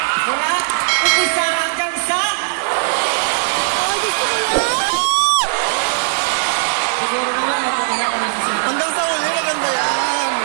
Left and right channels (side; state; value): left; silent; digital silence